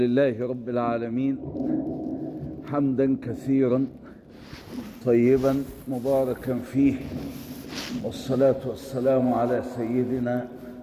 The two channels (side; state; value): both; identical; correlation 1.00